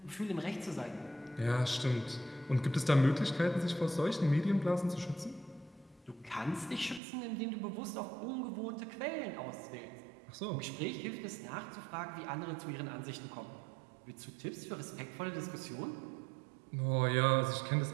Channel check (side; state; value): left; drops out; at 7.0 s